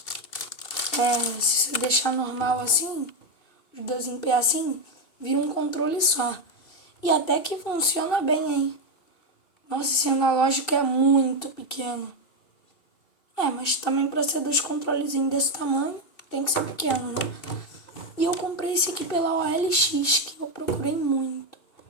se você deixar normal assim, os dois em pé assim, vira um controle só. E até que funciona bem, hein? Nossa, esse analógico é muito pequeno. Mas também para ser dois controlezinhos desse tamanho, tem que ser pequeno, né? E eu comprei esse aqui pela OLX, que eu procurei muito.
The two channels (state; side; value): late; right; 2.8 ms